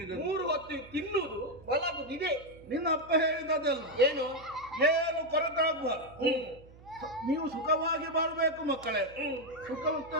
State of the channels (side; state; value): right; noise; hum, 22 dB below the sound